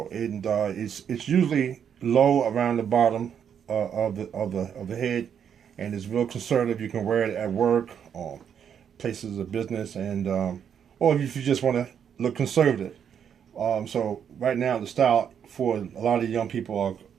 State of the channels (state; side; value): quieter; left; 8.2 dB